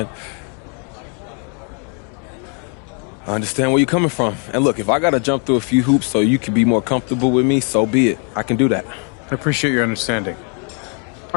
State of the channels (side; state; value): right; quieter; 39.9 dB